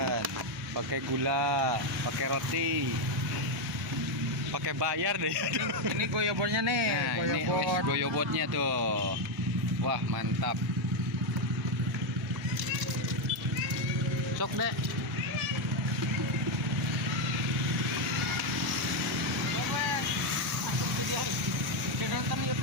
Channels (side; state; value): both; normal; correlation 0.05